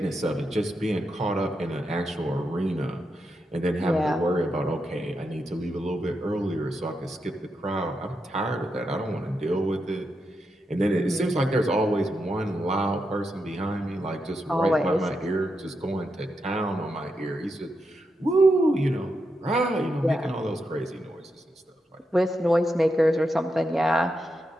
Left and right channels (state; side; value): normal; both; correlation 0.85